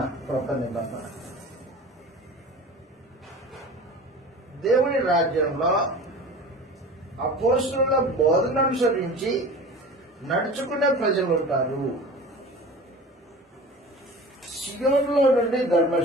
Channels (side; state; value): both; normal; correlation 0.37